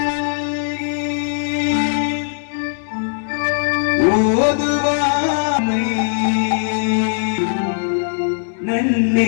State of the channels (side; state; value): right; silent; 58 dB below the other